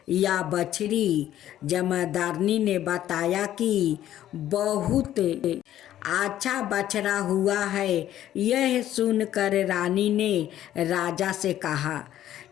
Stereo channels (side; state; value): right; quieter; 12.2 dB